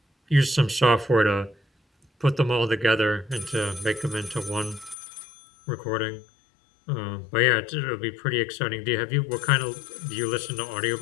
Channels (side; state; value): right; drops out; at 5.0 s